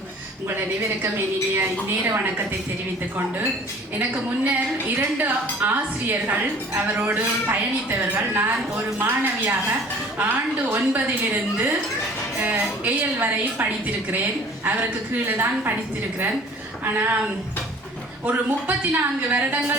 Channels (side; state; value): both; normal; correlation 0.49